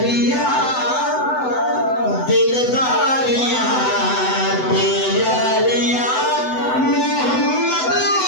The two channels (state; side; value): late; right; 7.9 ms